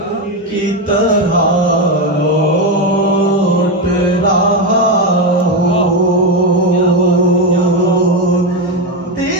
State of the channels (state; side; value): normal; both; correlation 0.10